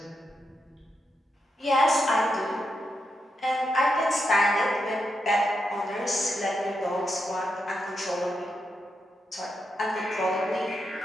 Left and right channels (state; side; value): normal; both; correlation 0.84